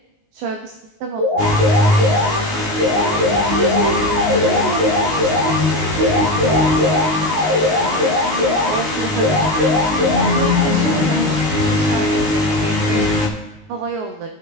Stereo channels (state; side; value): late; left; 19 ms